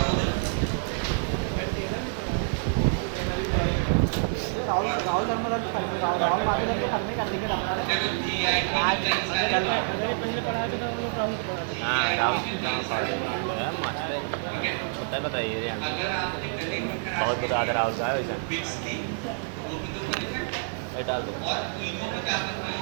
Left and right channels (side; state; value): left; silent; digital silence